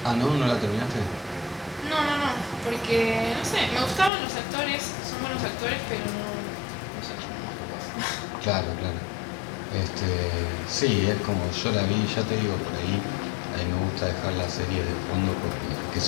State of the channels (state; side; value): drops out; right; at 4.1 s